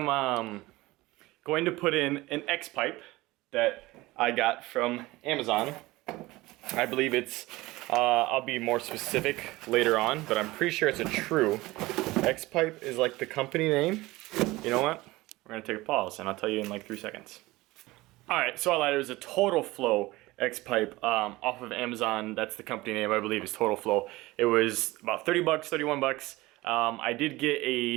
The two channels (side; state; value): left; quieter; 19.8 dB